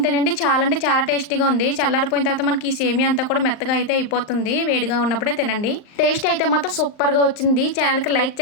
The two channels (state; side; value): late; right; 39 ms